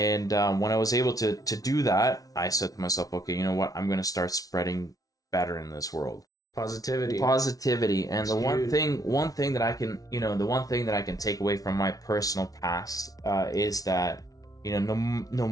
when I was able to do that, I said to myself, okay, you know what? I'm going to start spreading better in this world. Positivity. And That's the huge. one thing that I can, you know, the one thing that I can take away from my personal past is that, you know, no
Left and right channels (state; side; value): late; right; 0.18 ms